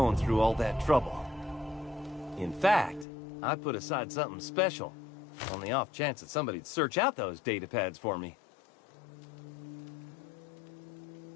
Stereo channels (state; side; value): drops out; right; at 3.1 s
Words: through all that trouble. In fact, I put aside something special, on the off chance that somebody'd search out those data pads for me.